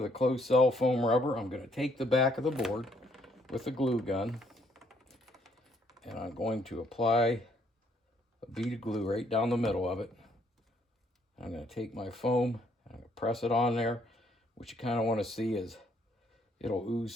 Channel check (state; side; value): normal; both; correlation 0.67